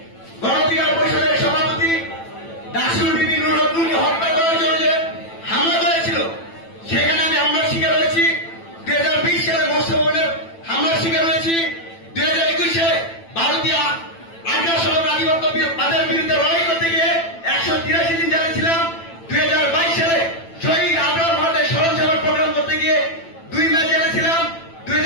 গণ অধিকার পরিষদের সভাপতি ডাকসুর বিবি নুরুন্নূরকে হত্যা করার জন্য যে হামলা করেছিল সেখানে আমি হামলার শিকার হয়েছি। 2020 সালে মোস্তফা হামলার শিকার হয়েছি। 2021 সালে ভারতীয় আগ্রাসন আধিপত্যবাদের বিরুদ্ধে লড়াই করতে গিয়ে 183 দিন জেলে ছিলাম। 2022 সালে শহীদ আবরার ভারতের স্মরণ সভার প্রোগ্রাম করতে গিয়ে 2 মাস জেলে ছিলাম।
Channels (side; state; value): right; late; 9.0 ms